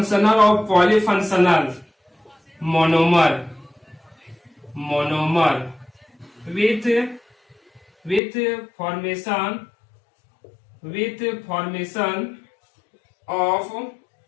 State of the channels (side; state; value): right; drops out; at 8.2 s